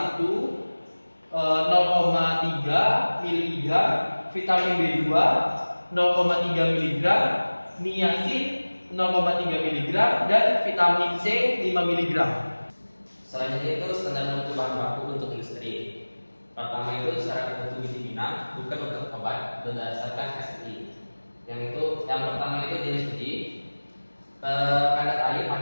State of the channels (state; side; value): inverted; both; correlation -1.00